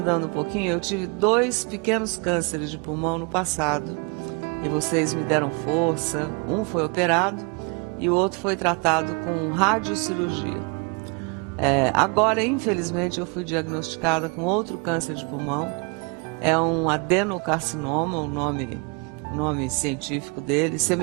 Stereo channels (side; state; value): left; quieter; 33.1 dB